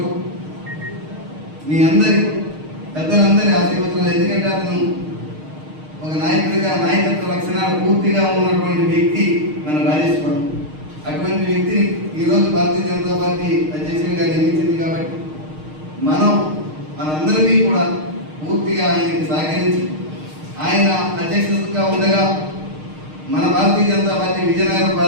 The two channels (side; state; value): left; late; 6.5 ms